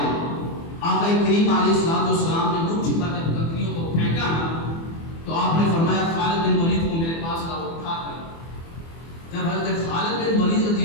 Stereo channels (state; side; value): late; right; 24 ms